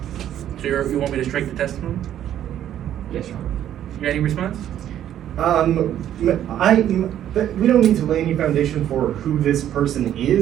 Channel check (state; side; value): quieter; left; 11.1 dB